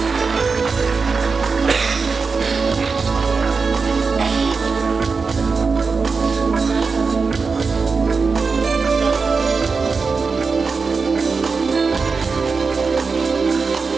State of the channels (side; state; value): left; quieter; 4.7 dB